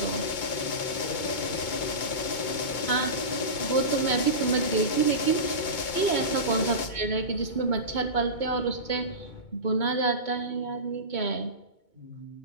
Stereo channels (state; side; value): late; right; 2.2 ms